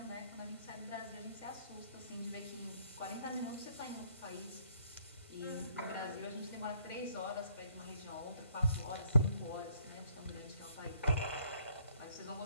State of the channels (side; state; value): both; inverted; correlation -0.66